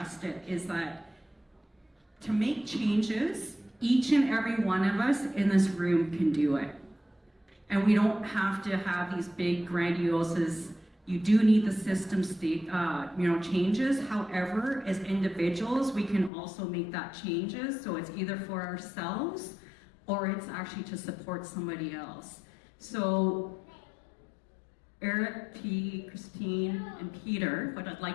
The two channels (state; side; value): drops out; right; at 16.3 s